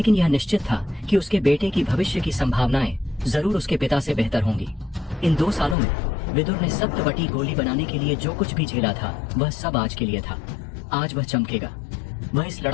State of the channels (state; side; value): drops out; right; at 5.8 s